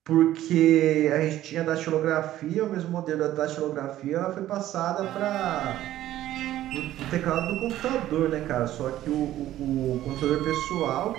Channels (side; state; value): left; quieter; 13.6 dB